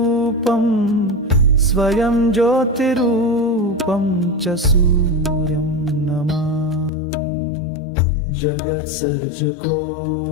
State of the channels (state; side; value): drops out; right; at 6.9 s